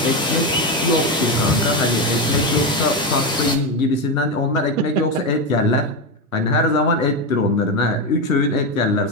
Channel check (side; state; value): both; normal; correlation 0.12